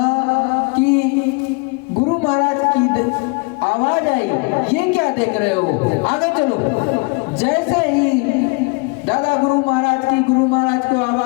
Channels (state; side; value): quieter; right; 29.8 dB